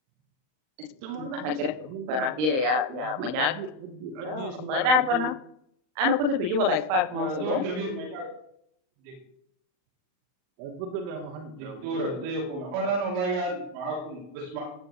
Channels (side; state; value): left; late; 39 ms